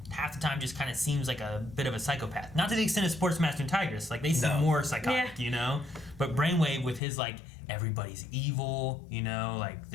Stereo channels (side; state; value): right; drops out; at 7.0 s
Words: half the time just kind of seems like a bit of a psychopath. Not to the extent of Sportsmaster and Tigress. Like they seem more psychotic, But Brainwave with his like everybody's evil, like